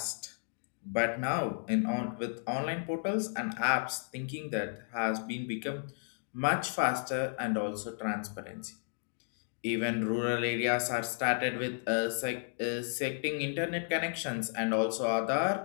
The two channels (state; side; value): silent; right; digital silence